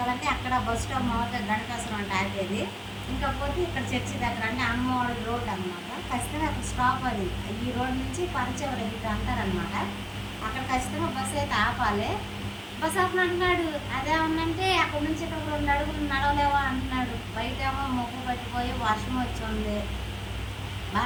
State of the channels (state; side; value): identical; both; correlation 1.00